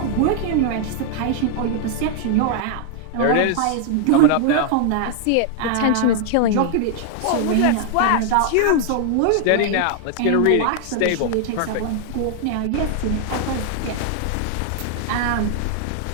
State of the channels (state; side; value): different; both; correlation 0.00